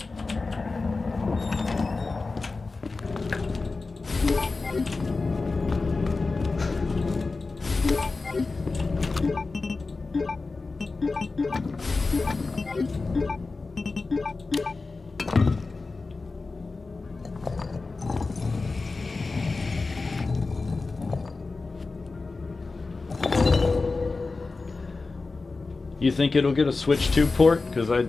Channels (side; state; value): right; quieter; 3.8 dB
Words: You think it'll get a Switch 2 port? Because I